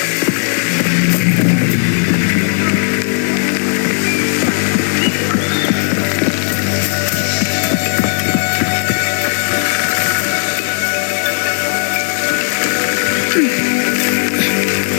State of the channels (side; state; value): right; silent; digital silence